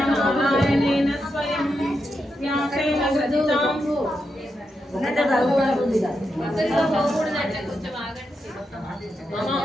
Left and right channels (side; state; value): both; normal; correlation 0.85